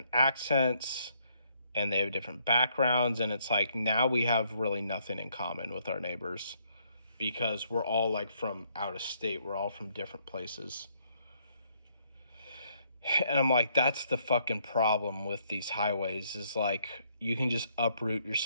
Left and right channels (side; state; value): both; inverted; correlation -0.70